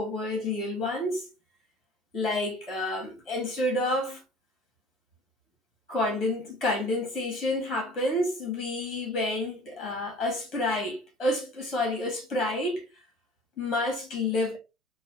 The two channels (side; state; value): both; normal; correlation 0.45